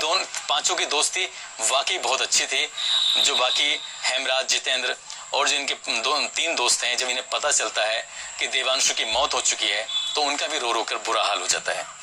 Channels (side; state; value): both; identical; correlation 1.00